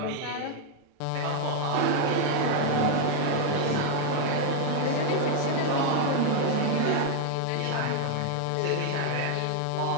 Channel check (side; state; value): both; different; correlation 0.00